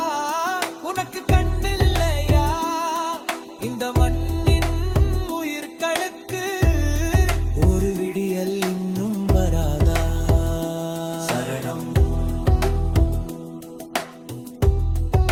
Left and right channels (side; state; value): both; identical; correlation 1.00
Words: உனக்கு கண்ணில்லையா? இந்த மண்ணின் உயிர்களுக்கு ஒரு விடியல் இன்னும் வராதா? சரணம்